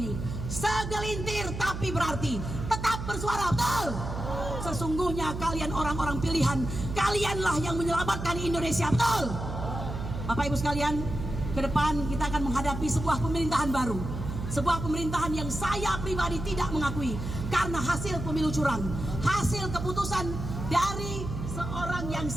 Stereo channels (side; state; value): right; noise; hum, 6 dB below the sound